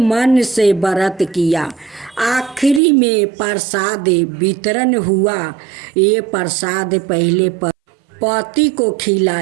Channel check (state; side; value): drops out; left; at 2.8 s